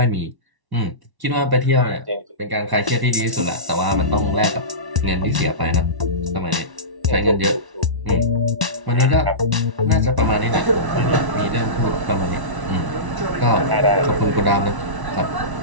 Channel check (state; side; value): late; left; 1.1 ms